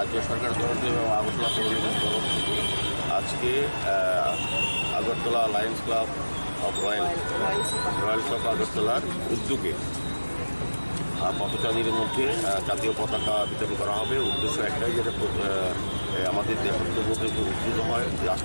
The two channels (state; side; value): inverted; both; correlation -1.00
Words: सरकार तरफ এবং আগরতলা পৌর নিগমের तरफ থেকে আজকে Agartala Lions club of Royals of আগরতলার উদ্যোগে পথচারীদের মধ্যে জাতীয় পতাকা বিতরণ করা হবে। উদ্দেশ্য একটাই, যেটা আমাদের দেশাত্মবোধ উদ্ভূত হয়,